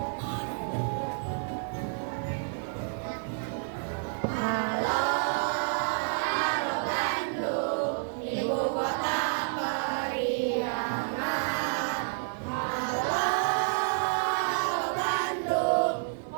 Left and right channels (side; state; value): left; silent; digital silence